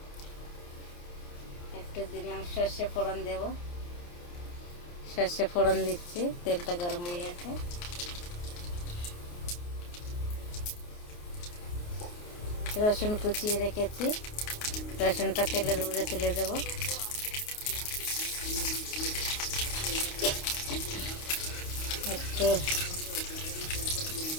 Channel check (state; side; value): late; right; 29 ms